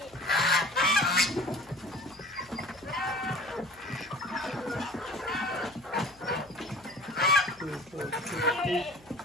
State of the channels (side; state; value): left; noise; hum, 28 dB below the sound